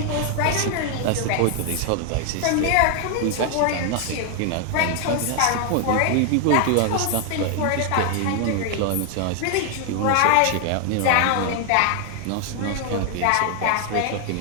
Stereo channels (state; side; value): different; both; correlation 0.00